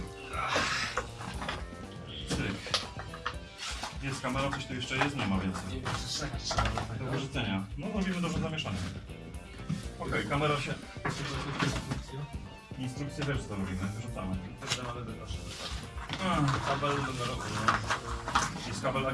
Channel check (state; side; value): identical; both; correlation 1.00